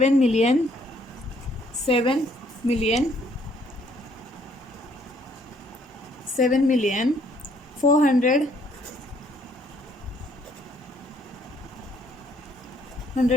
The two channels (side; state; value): both; normal; correlation 0.65